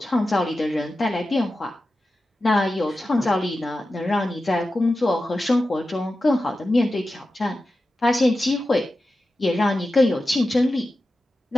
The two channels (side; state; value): both; normal; correlation 0.93